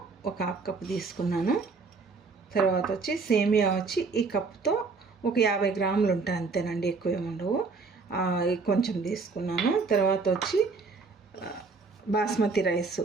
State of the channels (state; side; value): quieter; left; 4.3 dB